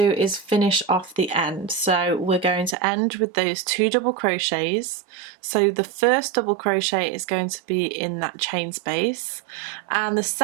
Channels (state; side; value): drops out; left; at 2.8 s